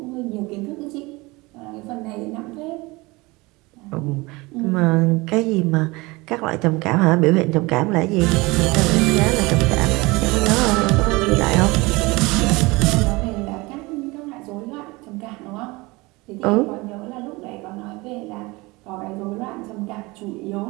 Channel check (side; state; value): left; quieter; 23.5 dB